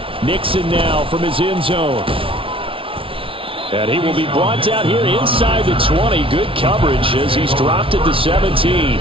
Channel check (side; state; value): left; late; 0.26 ms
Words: Nixon now from his end zone. And he will be brought down here inside the 20. Good coverage as he's dropped at the 17.